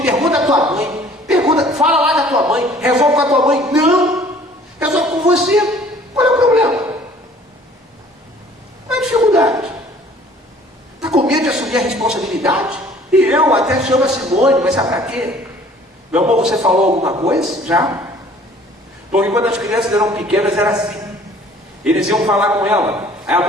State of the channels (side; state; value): both; normal; correlation 0.53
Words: pergunta à tua mãe. Fala lá da tua mãe. Resolve com a tua mãe. Não. Resolve com você. Qual é o problema? Qual é a dificuldade? Está com medo de assumir a responsabilidade? E eu até chamo a Simone, mas sabe para quê? Meu amor, você falou alguma coisa? Já? Porque quando as crianças eram pequenas era assim. Eles iam falar com ela. Aí a